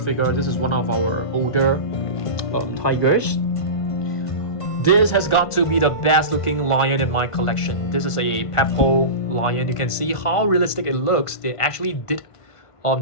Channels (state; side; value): late; right; 1.5 ms